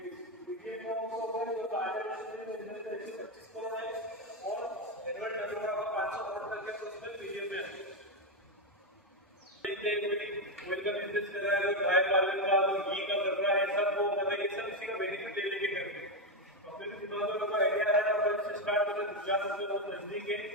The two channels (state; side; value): normal; both; correlation 0.07